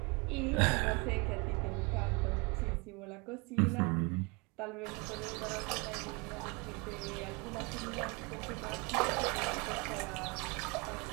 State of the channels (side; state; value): left; quieter; 29.0 dB